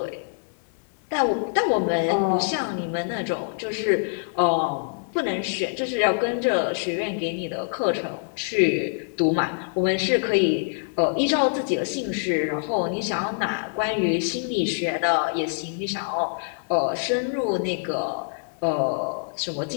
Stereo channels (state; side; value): silent; right; digital silence